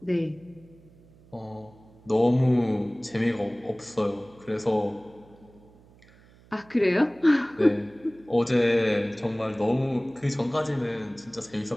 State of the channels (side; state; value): right; noise; hum, 26 dB below the sound